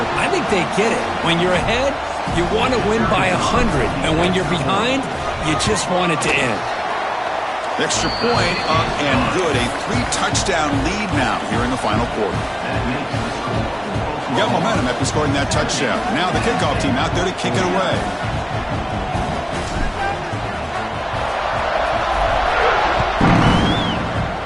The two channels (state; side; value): identical; both; correlation 1.00